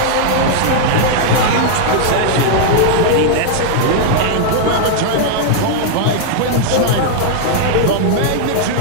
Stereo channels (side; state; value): both; different; correlation -0.01